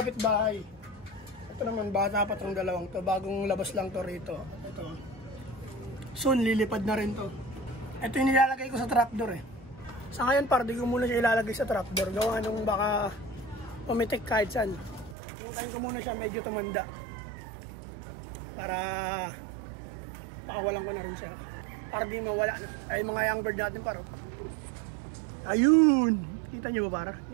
Ito naman, bata pa itong dalawang to. Bagong labas lang to rito. Ito. Soon, lilipad na rin to. Ito yung nilalagay ko sa trapdoor eh. Sa ngayon par, di ko muna siya ilalagay sa trapdoor. Gawa nung baka pumitik kahit saan. Puntahin ko muna siya, medyo tumanda. Para pakawalan ko na rin siya. Para di mawala. Ay mga young bird natin par. Ayun! Kita nyo ba par?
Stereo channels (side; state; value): left; drops out; at 15.2 s